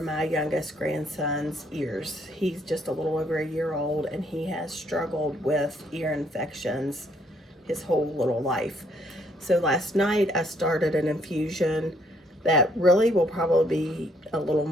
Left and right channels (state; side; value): normal; both; correlation 0.68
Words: youngest grandson's ears. He's just a little over a year old, and he has struggled with ear infections his whole little life. So last night I started an infusion that really will probably be a little